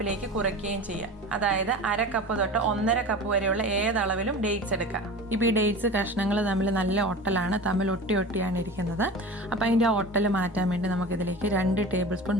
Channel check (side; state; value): both; normal; correlation 0.34